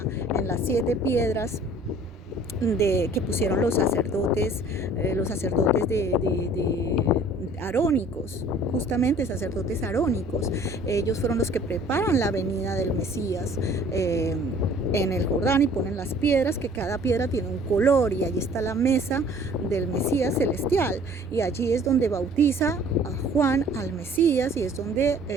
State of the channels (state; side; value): normal; both; correlation 0.52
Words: en las 7 piedras que pusieron los sacerdotes de arónicos, justamente sacerdotes arónicos. Ellos fueron los que preparan la venida del Mesías en el Jordán y ponen las piedras, que cada piedra tiene un color, y allí está la mesa del Mesías celestial, y allí es donde bautiza a Juan al Mesías, y es donde